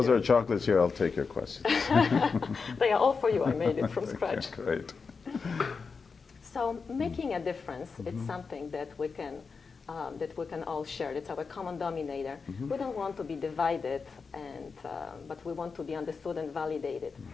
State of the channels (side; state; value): right; quieter; 5.0 dB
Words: there are chocolates here, I'll take your questions. They are all for you. I made it from scratch. Great. So making a difference, it's something that we can all share. It's our common denominator. We don't want to be divided, but we want to be understood and validated.